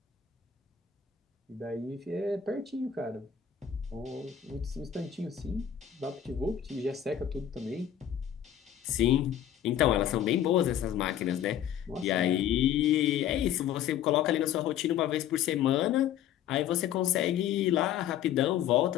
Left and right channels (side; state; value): right; quieter; 10.0 dB